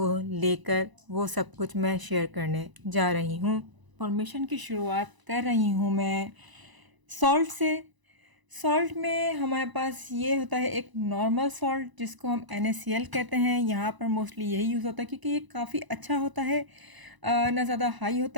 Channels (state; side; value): late; left; 1.0 ms